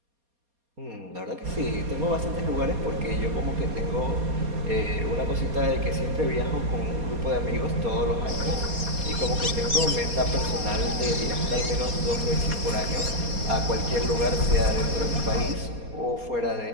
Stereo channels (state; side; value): late; left; 4.2 ms